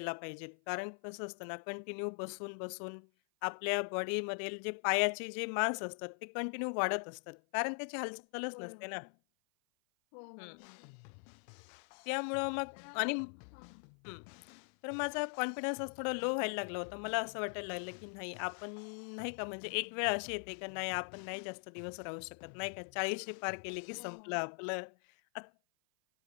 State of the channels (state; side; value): silent; right; 51 dB below the other